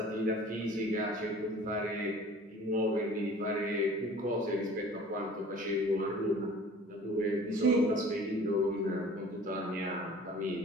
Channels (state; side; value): normal; both; correlation 0.47